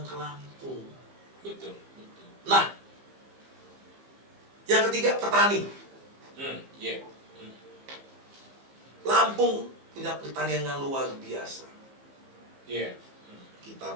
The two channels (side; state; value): left; late; 15 ms